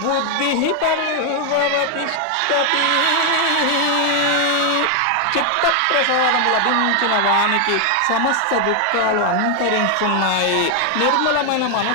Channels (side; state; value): both; different; correlation 0.00